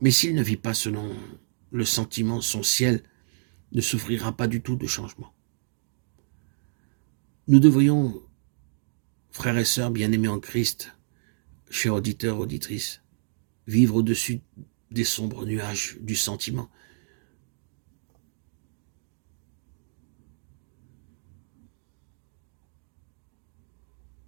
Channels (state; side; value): silent; left; digital silence